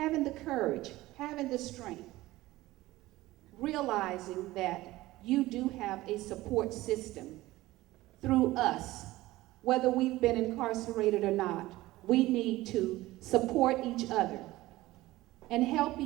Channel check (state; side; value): quieter; left; 17.7 dB